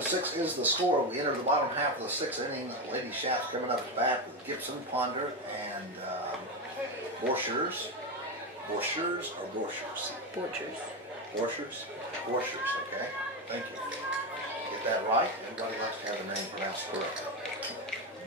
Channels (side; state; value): both; normal; correlation 0.13